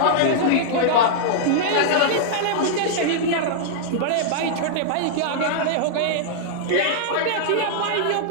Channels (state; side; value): different; both; correlation -0.02